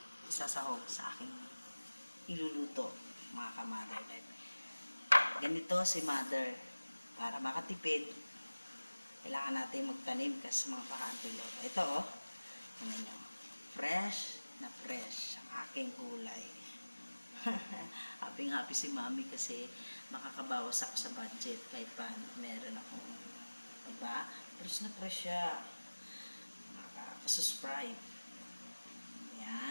isasahog sa aking iluluto, mga ka-Mother Life. Ganito si Mother. Para makatipid, kailangan natin magtanim kasi mga pakantulog. Ito ano nyo, fresh na fresh ang aking gulay. Happy si mami kasi makakabawas ako sa budget kahit paano meron akong, diba? Fresh na fresh siya, makakasubscribe.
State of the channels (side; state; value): both; inverted; correlation -1.00